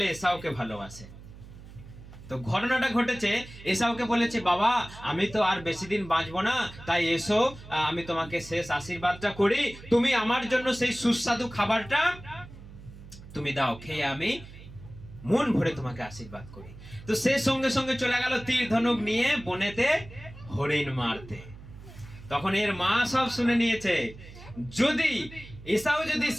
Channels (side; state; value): right; noise; hum, 17 dB below the sound